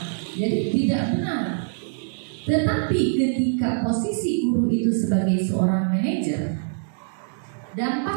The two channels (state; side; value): silent; left; digital silence